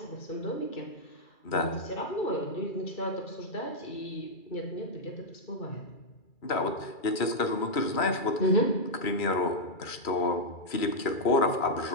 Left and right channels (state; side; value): late; right; 2.3 ms